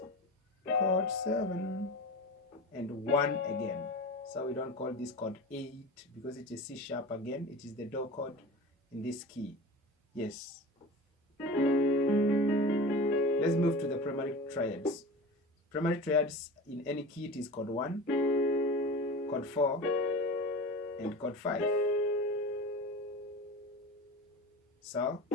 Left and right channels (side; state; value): both; normal; correlation 0.32